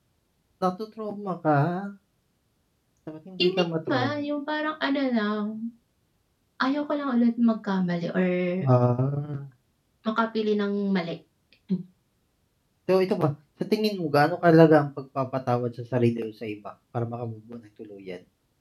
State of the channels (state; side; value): identical; both; correlation 1.00